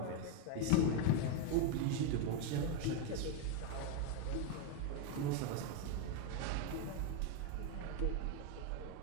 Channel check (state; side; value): different; both; correlation 0.01